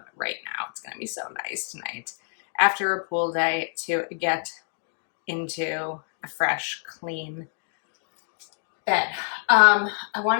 right now. It's going to be so nice tonight after a pool day to get into a fresh, clean bed. I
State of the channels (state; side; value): silent; right; digital silence